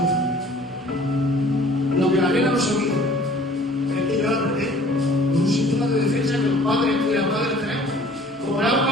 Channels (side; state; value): both; normal; correlation 0.51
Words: lo que la nena no sabía es que yo la apreté con un síntoma de defensa que los padres y las madres tenemos. Como la